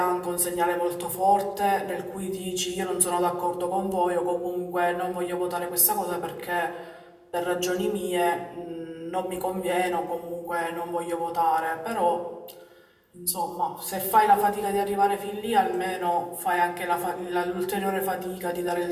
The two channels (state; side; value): identical; both; correlation 1.00